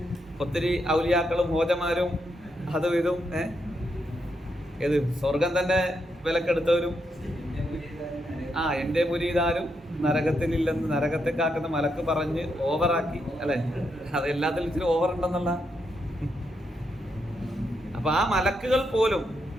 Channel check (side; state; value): both; normal; correlation 0.81